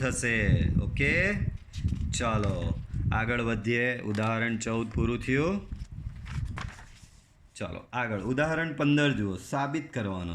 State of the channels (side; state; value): both; identical; correlation 1.00